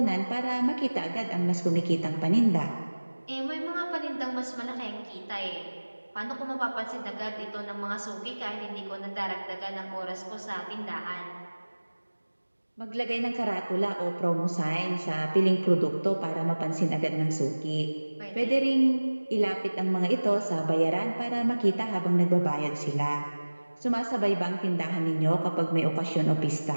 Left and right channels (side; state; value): both; inverted; correlation -1.00